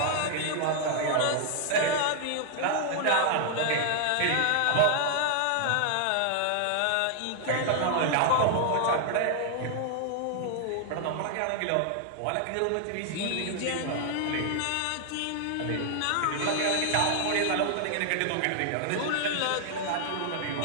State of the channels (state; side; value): different; both; correlation 0.00